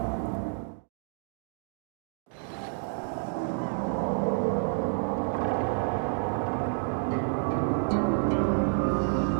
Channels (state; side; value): silent; left; 58 dB below the other